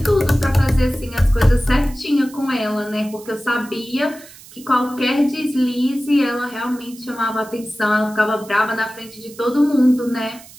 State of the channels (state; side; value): noise; right; hiss, 20 dB below the sound